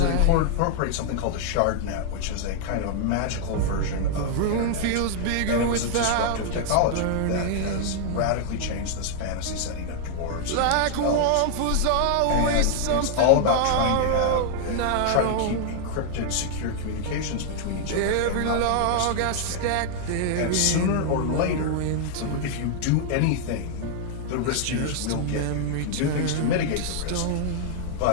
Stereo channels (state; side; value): different; both; correlation -0.01